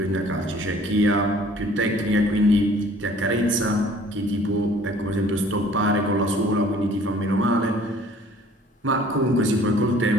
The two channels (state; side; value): normal; both; correlation 0.54